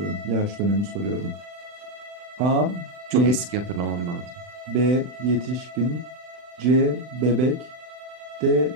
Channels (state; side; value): late; left; 40 ms